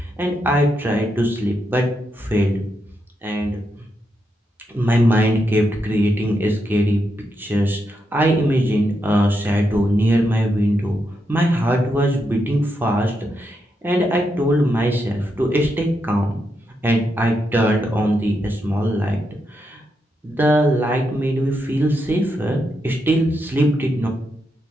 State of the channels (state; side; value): normal; both; correlation 0.83